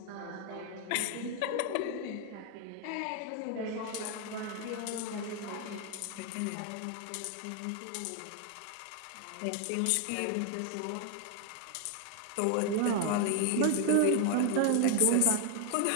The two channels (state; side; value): different; both; correlation 0.00